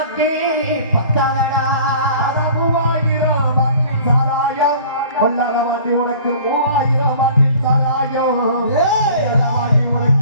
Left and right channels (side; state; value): both; inverted; correlation -0.47